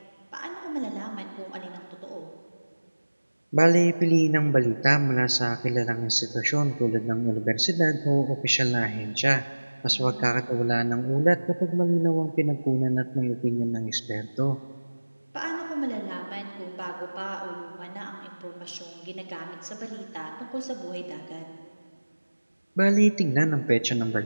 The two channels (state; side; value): inverted; both; correlation -1.00